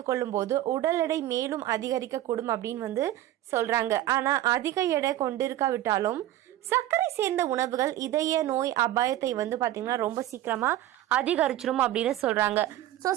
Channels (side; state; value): left; quieter; 13.8 dB